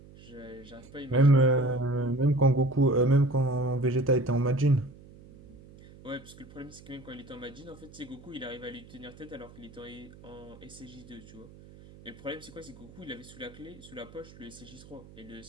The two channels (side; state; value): right; noise; hum, 20 dB below the sound